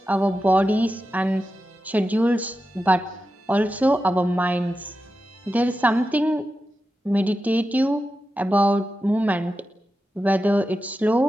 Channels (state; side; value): normal; both; correlation 0.91